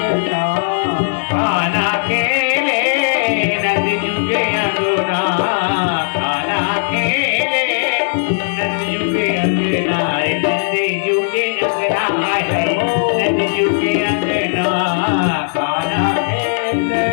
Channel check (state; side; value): silent; right; 68 dB below the other